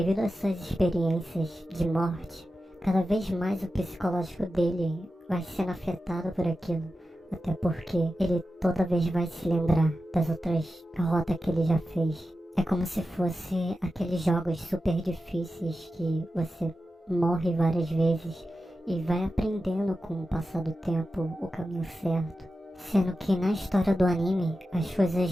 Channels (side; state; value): both; normal; correlation 0.92